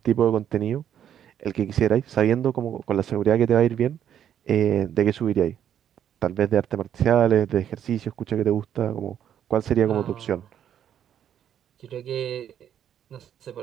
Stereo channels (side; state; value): left; quieter; 9.7 dB